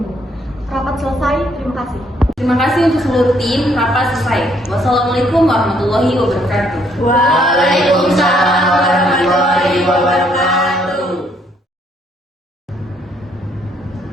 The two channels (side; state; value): both; normal; correlation 0.68